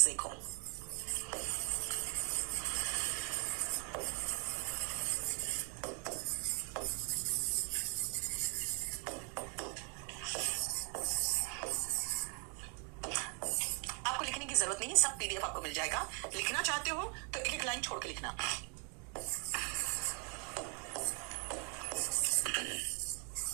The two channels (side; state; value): left; quieter; 35.6 dB